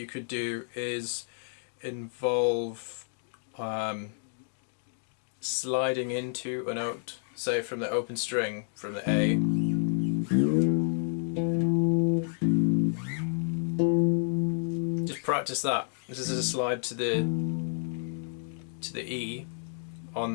could do is involve sliding into a note, say from the open string, from the A. Just practice that. This is a slide to the E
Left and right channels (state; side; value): silent; right; digital silence